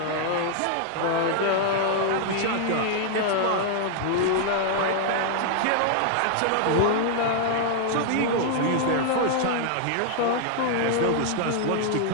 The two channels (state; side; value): different; both; correlation 0.00